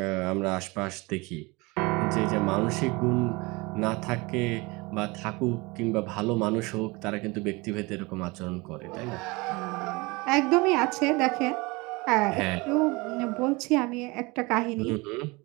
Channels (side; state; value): left; quieter; 24.9 dB